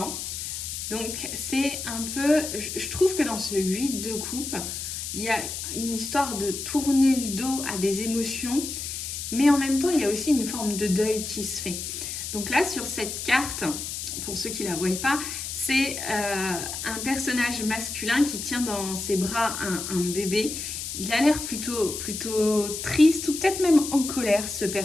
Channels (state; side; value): noise; left; hiss, 6 dB below the sound